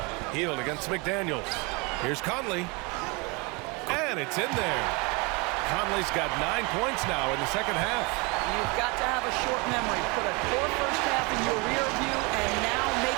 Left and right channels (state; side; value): quieter; left; 28.5 dB